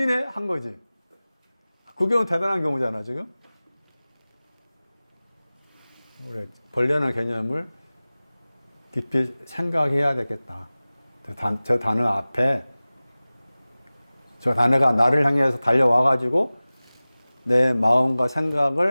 한 거지. 그 경우는 대단한 경우잖아 지금. 우리 벌레라는 개념을 깊이 생각해야 되겠다. 저 단어 앞에 저 단어가 나를 향해서 달려와가지고 내 마음과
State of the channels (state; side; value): inverted; both; correlation -0.98